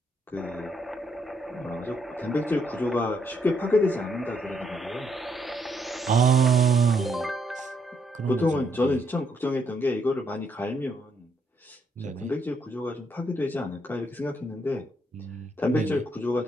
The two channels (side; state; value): both; normal; correlation 0.74